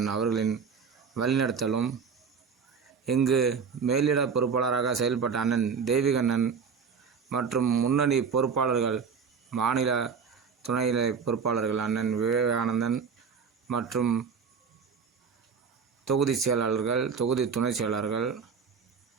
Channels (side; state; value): left; quieter; 6.0 dB